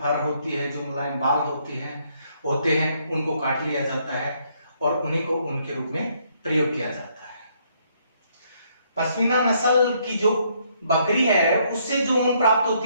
होती है, जो मुलायम बाल होते हैं उनको काट लिया जाता है और उन्हीं को ऊन के रूप में प्रयोग किया जाता है। पश्मीना नस्ल की जो बकरी है उससे जो ऊन प्राप्त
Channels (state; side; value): inverted; both; correlation -0.70